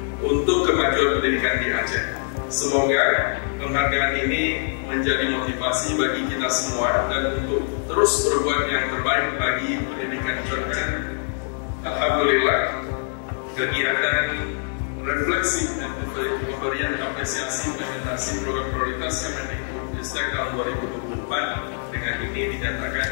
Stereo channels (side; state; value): right; silent; 63 dB below the other